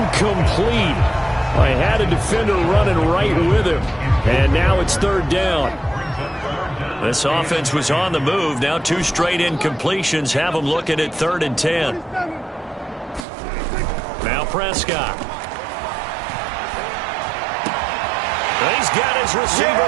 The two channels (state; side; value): drops out; left; at 13.2 s